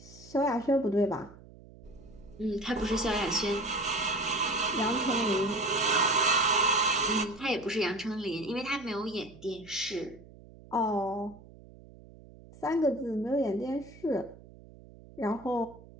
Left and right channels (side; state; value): right; noise; hum, 20 dB below the sound